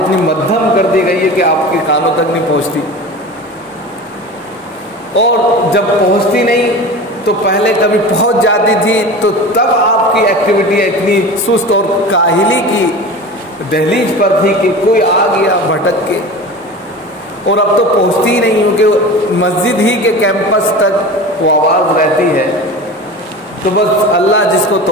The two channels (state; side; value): normal; both; correlation 0.33